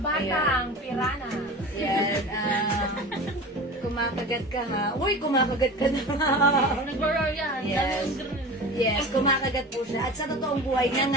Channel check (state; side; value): normal; both; correlation 0.34